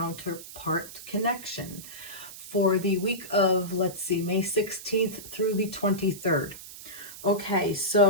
connection for the week of, let's see, May 16th through the 23rd. Okay,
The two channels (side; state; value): right; noise; hiss, 14 dB below the sound